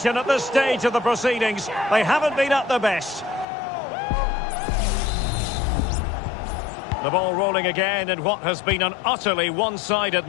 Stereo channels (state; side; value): drops out; right; at 3.5 s